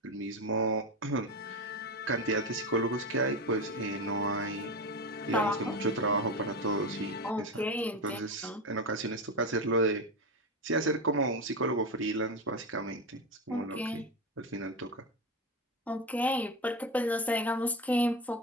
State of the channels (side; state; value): both; normal; correlation 0.18